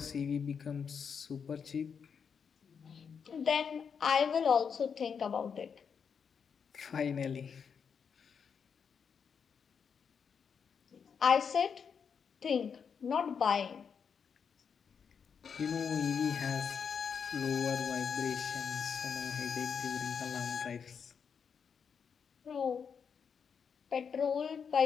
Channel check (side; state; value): right; quieter; 6.6 dB